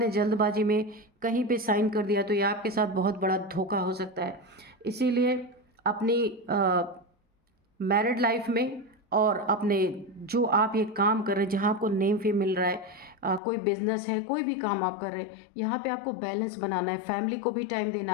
जल्दबाजी में कहीं पे साइन कर दिया तो ये आपके साथ बहुत बड़ा धोखा हो सकता है। इसीलिए अपनी मैरिड लाइफ में और अपने जो आप ये काम कर रहे हैं, जहाँ आपको नेम फेम मिल रहा है, कोई बिजनेस है, कोई भी काम आप कर रहे हैं, यहाँ पे आपको बैलेंस बनाना है। फैमिली को भी टाइम देना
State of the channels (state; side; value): drops out; right; at 13.4 s